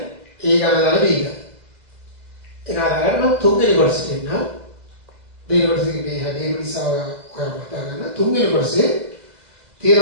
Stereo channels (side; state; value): left; late; 2.0 ms